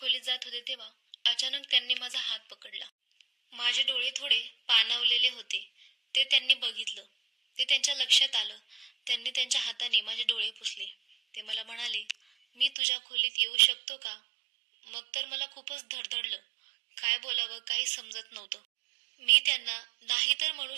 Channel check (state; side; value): drops out; left; at 12.7 s